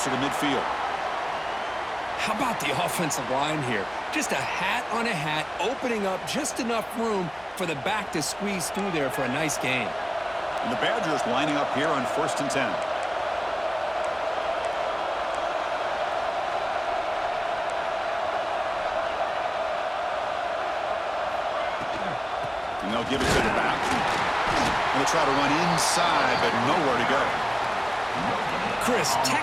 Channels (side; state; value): both; identical; correlation 1.00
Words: to midfield. How about the offensive line here? Just a hat on a hat, opening up just enough room for the back to squeeze through there for a nice gain. And the Badgers lining up here on 1st and 10. And they'll give it to the back. And they'll try to run inside, but nowhere to go. Chris,